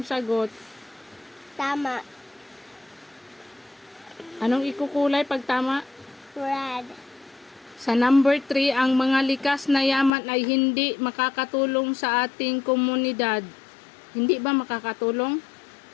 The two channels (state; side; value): drops out; right; at 10.1 s